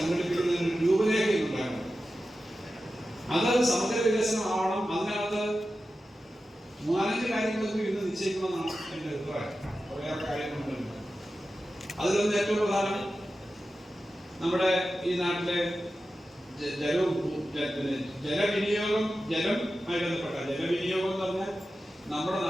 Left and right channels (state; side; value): normal; both; correlation 0.93